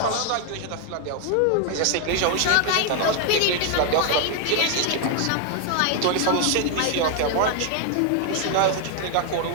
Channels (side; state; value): both; different; correlation 0.00